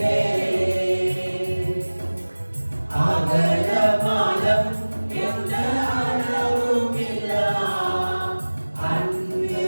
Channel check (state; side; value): inverted; both; correlation -1.00